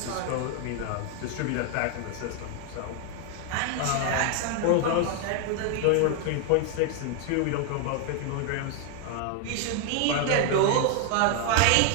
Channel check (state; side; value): different; both; correlation 0.00